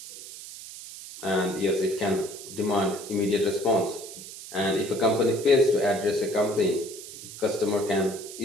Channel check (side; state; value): right; noise; hiss, 13 dB below the sound